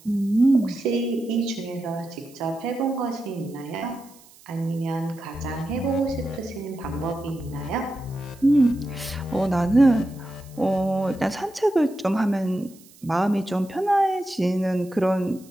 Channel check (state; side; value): noise; right; hiss, 25 dB below the sound